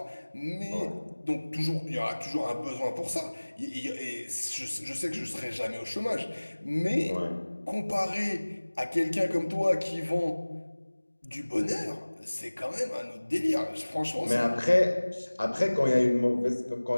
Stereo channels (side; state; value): both; inverted; correlation -1.00